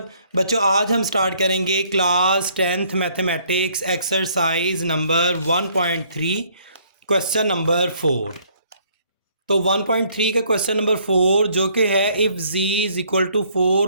बच्चों, आज हम स्टार्ट करेंगे class 10th mathematics exercise number 1.3 question number 4। तो 1.3 का क्वेश्चन नंबर 4 जो कि है if z is equal to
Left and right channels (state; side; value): inverted; both; correlation -0.63